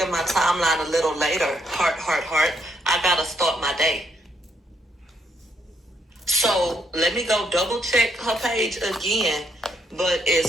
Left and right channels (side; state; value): both; normal; correlation 0.75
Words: my timeline a little later. Heart, heart, heart. I gotta start my day. So let me go double check her page again. But